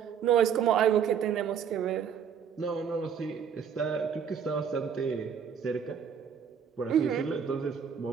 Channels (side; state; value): left; quieter; 7.5 dB